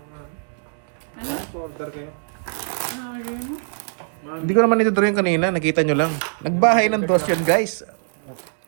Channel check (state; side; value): silent; left; digital silence